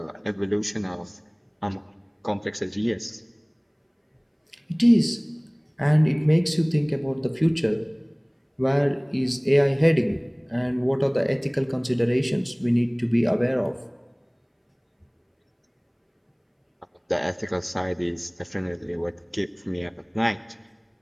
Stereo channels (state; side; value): identical; both; correlation 1.00